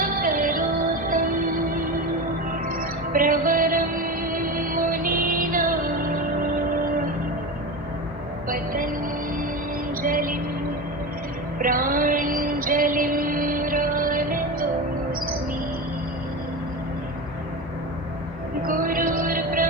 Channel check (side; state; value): both; normal; correlation 0.24